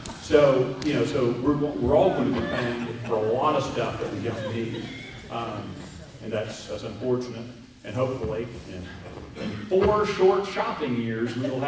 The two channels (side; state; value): both; identical; correlation 1.00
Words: So we're all going to be paying for a lot of stuff that we don't need, and that's unfortunate. And hopefully, in 4 short shopping years, we will